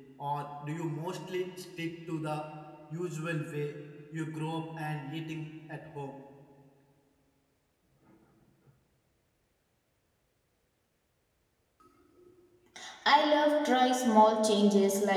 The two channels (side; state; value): both; identical; correlation 1.00